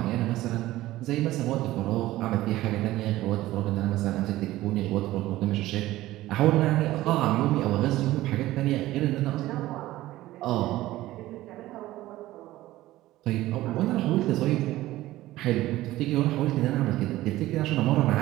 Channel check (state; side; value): quieter; left; 16.2 dB